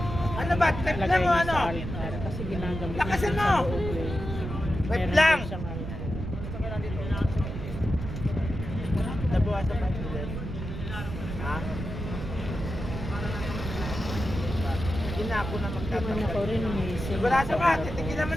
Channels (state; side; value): noise; right; rumble, 6 dB below the sound